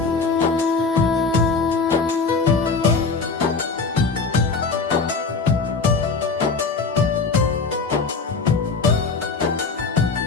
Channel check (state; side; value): quieter; right; 4.4 dB